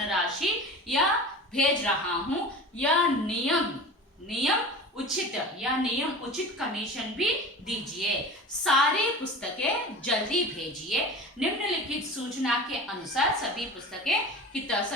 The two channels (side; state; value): both; normal; correlation 0.35